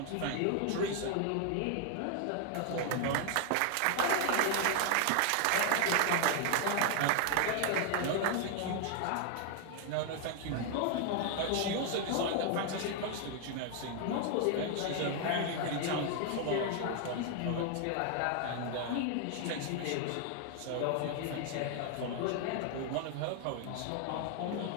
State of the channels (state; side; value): different; both; correlation 0.00